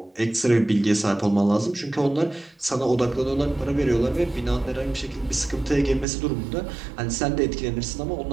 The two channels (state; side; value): drops out; left; at 6.1 s